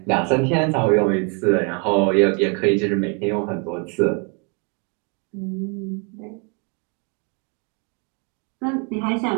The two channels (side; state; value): left; quieter; 35.8 dB